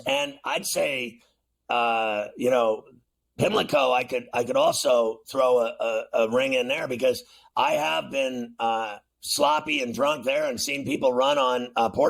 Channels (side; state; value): both; identical; correlation 1.00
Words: And I'd say, Pimlico, I could also throw a ring in there because I have been sloppy and drunk there and seen people run on